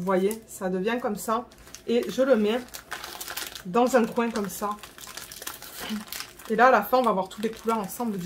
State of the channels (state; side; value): identical; both; correlation 1.00